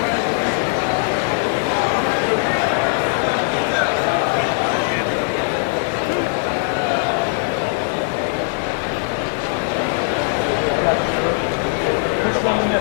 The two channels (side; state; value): right; silent; digital silence